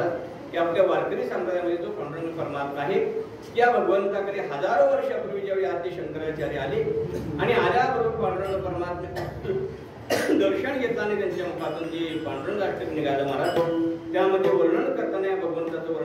की आपल्या वारकरी संप्रदायामध्ये जो पांडुरंग परमात्मा आहे त्या भगवंताकडे हजारो वर्षापूर्वी ज्यावेळी आद्य शंकराचार्य आले आणि आल्याबरोबर पांडुरंग परमात्मा दर्शन घेताना त्यांच्या मुखातून जे पांडुरंग अष्टक निघालं महाराज त्यामध्ये वर्णन करताना या भगवंताचं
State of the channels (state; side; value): identical; both; correlation 1.00